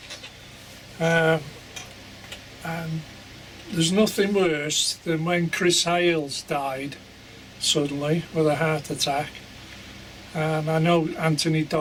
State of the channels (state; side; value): identical; both; correlation 1.00